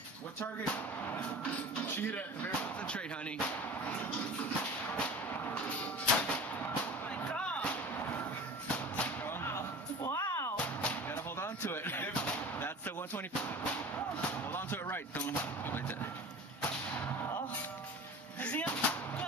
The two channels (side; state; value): both; normal; correlation 0.37